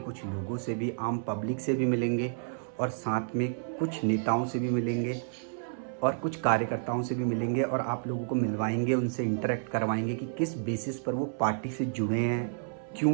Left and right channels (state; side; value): silent; left; 58 dB below the other